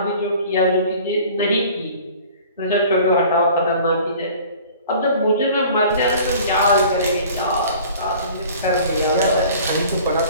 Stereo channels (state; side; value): inverted; both; correlation -0.47